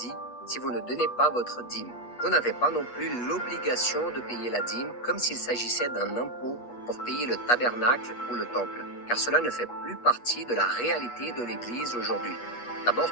si vous ne donnez pas votre dîme. Vous n'avez pas non plus l'obligation de payer la dîme comme s'il s'agissait d'un impôt pour payer le tabernacle ou le temple, car cela ne fait plus partie de la réalité de l'Église aujourd'hui. D'abord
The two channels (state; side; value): late; right; 8.3 ms